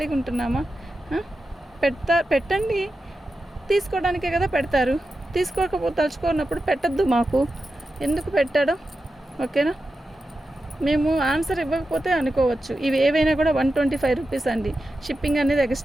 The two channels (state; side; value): normal; both; correlation 0.91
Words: ఉంటున్నామా? పెట్టండి, తీసుకోవడానికే కదా పెడతారు. తలుచుకున్నప్పుడు పెట్టద్దు, మాకు ఎందుకు పెట్టడం, ఓకేనా. మేము ఆన్సర్ ఇవ్వకపోతే అనుకోవచ్చు. ఇవి ఏవైనా కూడా 125 రూపీస్ అండి. షిప్పింగ్ అనేది